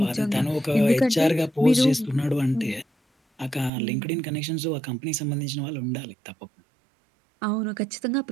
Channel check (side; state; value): left; drops out; at 3.7 s